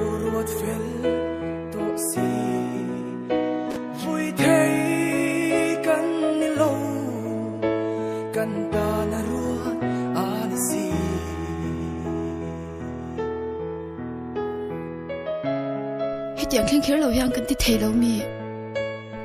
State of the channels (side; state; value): both; identical; correlation 1.00